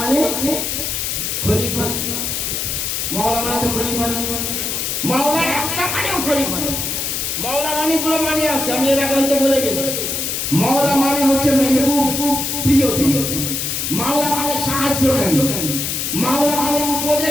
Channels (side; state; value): left; noise; hiss, 2 dB below the sound